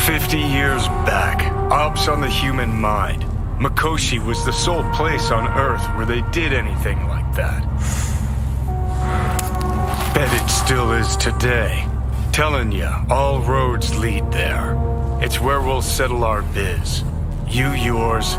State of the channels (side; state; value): both; identical; correlation 1.00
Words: 50 years back, ops on the human mind. Mikoshi was the sole place on Earth where they did anything like that. Bet it still is today. Telling ya, all roads lead there. It's where we'll settle our biz. You yours,